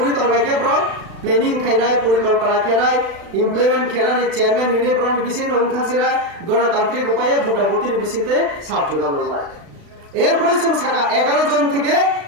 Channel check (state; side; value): late; left; 36 ms